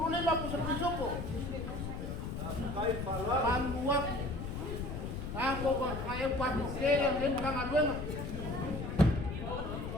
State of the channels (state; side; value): noise; left; rumble, 5 dB below the sound